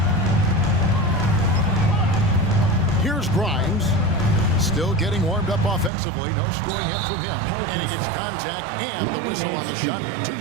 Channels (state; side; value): drops out; left; at 5.9 s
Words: Here's Grimes. Still getting warmed up offensively. No scoring hit from him. And he gets contact and the whistle on the shot. 2